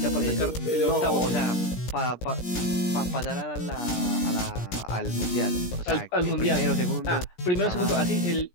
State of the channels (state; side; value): late; right; 17 ms